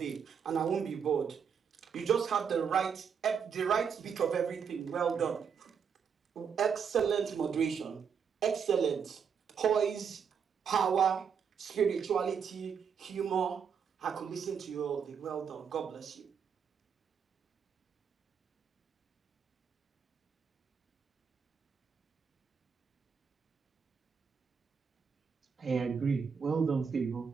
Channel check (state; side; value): quieter; left; 6.8 dB